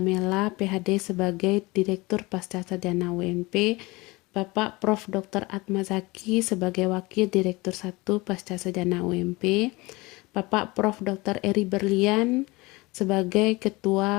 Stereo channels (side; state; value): right; quieter; 23.0 dB